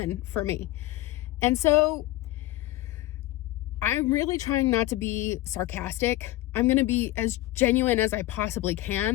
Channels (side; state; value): right; quieter; 17.1 dB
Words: for me. And so I'm really trying not to be sarcastic. I'm going to be as genuine as I possibly